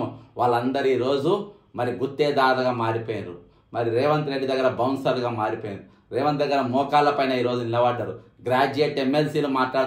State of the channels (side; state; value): both; identical; correlation 1.00